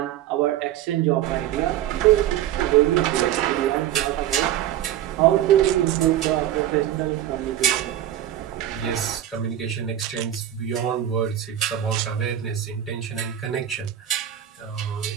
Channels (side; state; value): left; quieter; 11.6 dB